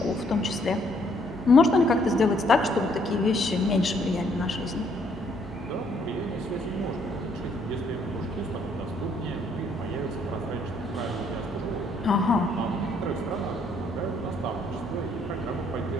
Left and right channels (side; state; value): both; normal; correlation 0.68